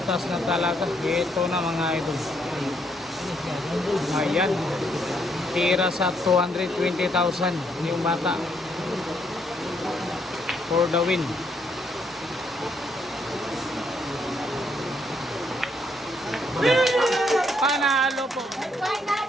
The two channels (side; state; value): both; normal; correlation 0.72